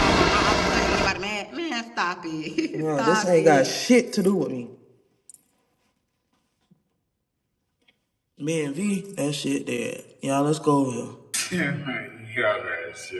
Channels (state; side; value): identical; both; correlation 1.00